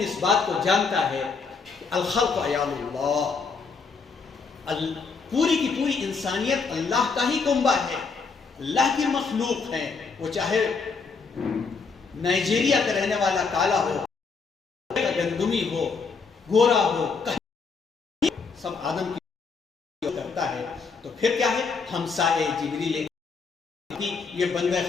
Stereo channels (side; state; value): right; quieter; 4.9 dB